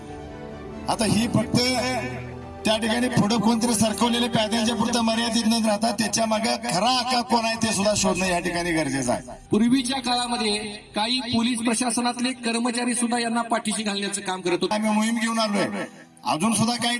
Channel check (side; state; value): both; identical; correlation 1.00